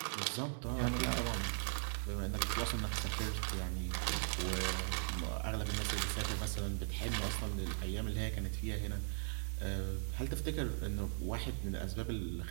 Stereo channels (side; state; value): left; silent; digital silence